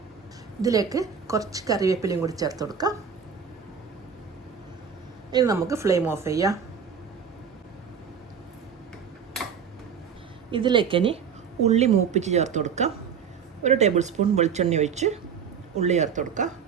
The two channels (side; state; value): left; quieter; 6.9 dB